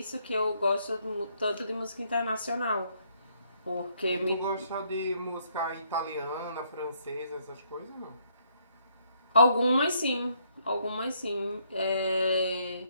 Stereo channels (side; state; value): both; inverted; correlation -0.70